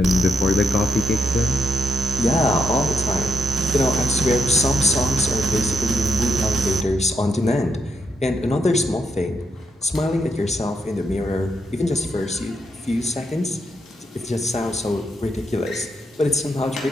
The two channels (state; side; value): normal; both; correlation 0.79